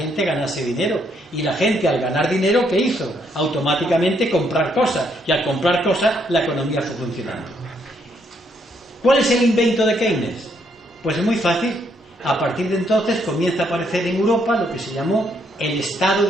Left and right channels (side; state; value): both; normal; correlation 0.73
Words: ganase dinero. Y la gente, al ganar dinero, ¿qué hizo? Automáticamente comprar cosas. Y al comprar cosas, la economía fue funcionando. ¿Cuál es el invento de Keynes? Pues es muy fácil. A partir de entonces comienza a aparecer en Europa lo que se llamó el estado